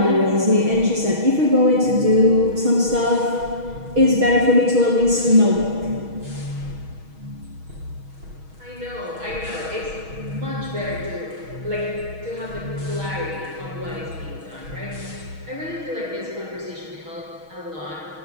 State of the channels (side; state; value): left; late; 6.3 ms